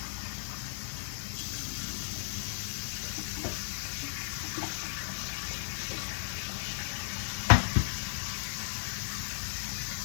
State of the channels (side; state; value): right; silent; 54 dB below the other